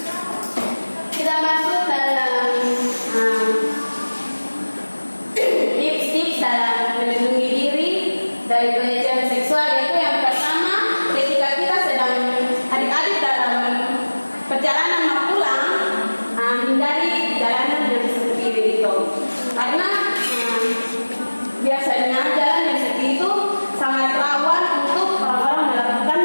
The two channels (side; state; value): both; inverted; correlation -1.00